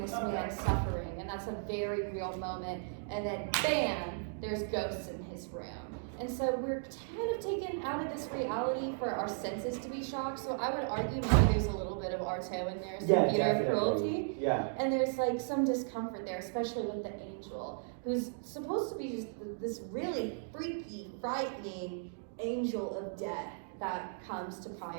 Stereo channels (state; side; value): silent; left; digital silence